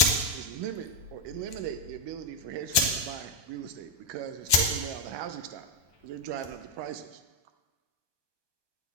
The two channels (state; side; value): late; left; 1.2 ms